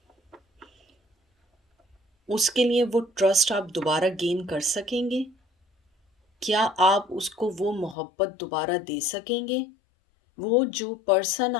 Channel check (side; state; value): right; drops out; at 8.0 s